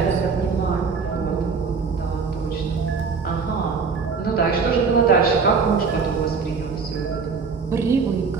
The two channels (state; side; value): quieter; left; 5.2 dB